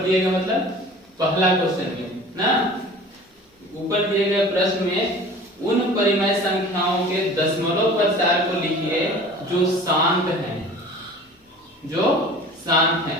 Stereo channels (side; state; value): both; normal; correlation 0.43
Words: गए मतलब पहला क्वेश्चन में ना, ऊपर दिए गए प्रश्न में उन परिमेय संख्याओं के दशमलव प्रचार को लिखिए जो शांत हैं, जो शांत हैं,